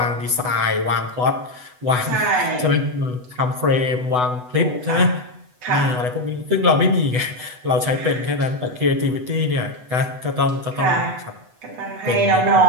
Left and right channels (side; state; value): left; late; 8.0 ms